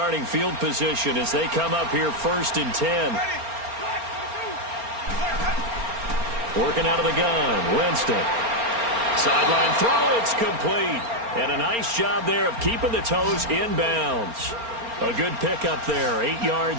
field position as they come up here 1st and 10. Working out of the gun, Winston. Sideline throw, it's complete. And a nice job there of keeping the toes in bounds. A good pickup there, 8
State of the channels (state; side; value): late; left; 4.3 ms